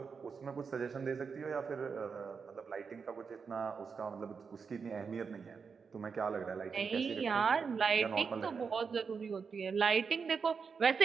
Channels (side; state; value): left; quieter; 5.6 dB